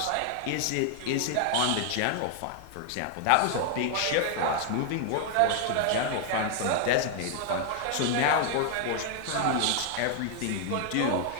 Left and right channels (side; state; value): both; different; correlation 0.00